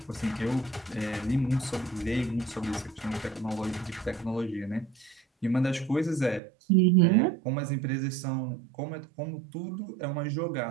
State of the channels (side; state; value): left; drops out; at 6.4 s